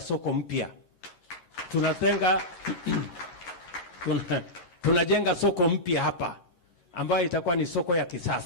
mpya. Tunajenga soko mpya hapa ambayo itakuwa ni soko ya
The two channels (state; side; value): late; right; 11 ms